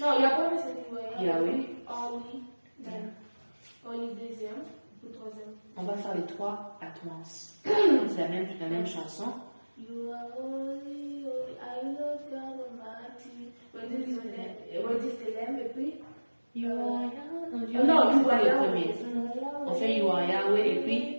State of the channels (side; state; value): both; inverted; correlation -1.00